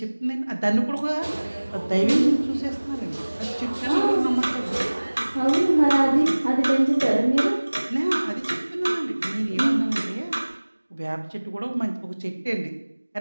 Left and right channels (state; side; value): inverted; both; correlation -1.00